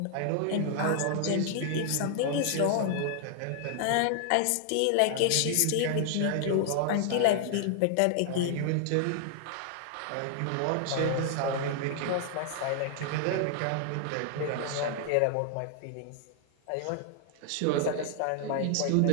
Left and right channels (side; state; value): both; different; correlation 0.00